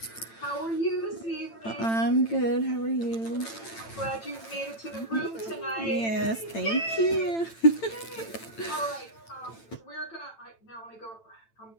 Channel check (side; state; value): right; late; 8.9 ms